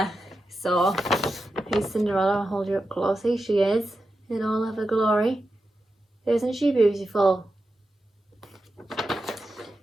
So here's Cinderella. I'll hold you up close. Here she is in all of her glory. Isn't she beautiful?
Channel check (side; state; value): both; normal; correlation 0.90